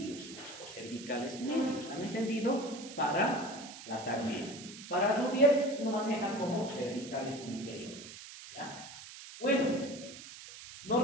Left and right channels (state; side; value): noise; right; hiss, 14 dB below the sound